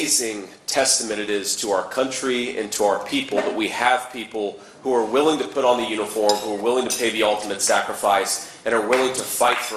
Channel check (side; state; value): both; identical; correlation 1.00